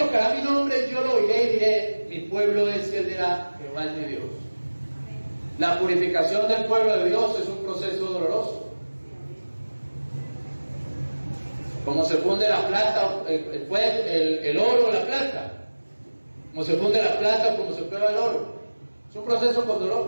mi nombre, yo lo oiré y diré: mi pueblo es, y él dirá: Jehová es mi Dios. La purificación del pueblo de Dios es un proceso doloroso. Como se funde la plata, el oro o la plata. Como se funde la plata, como se prueba el oro. Es un proceso con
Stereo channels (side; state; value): both; inverted; correlation -1.00